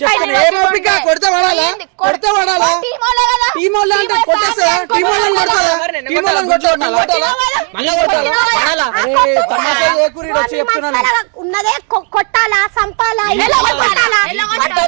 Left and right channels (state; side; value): quieter; left; 38.1 dB